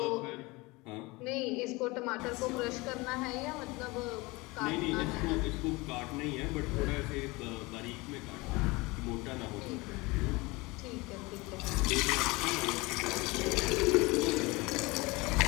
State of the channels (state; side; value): quieter; right; 23.7 dB